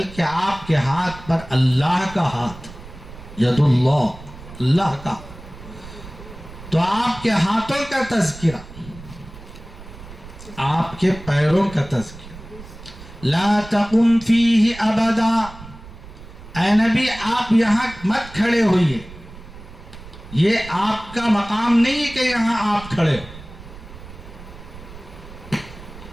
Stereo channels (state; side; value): noise; right; rumble, 16 dB below the sound